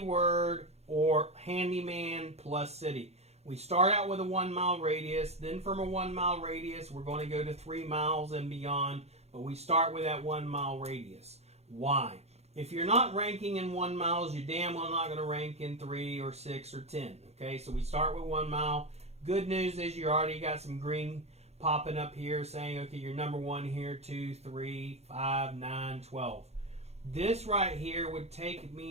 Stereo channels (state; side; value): late; left; 0.31 ms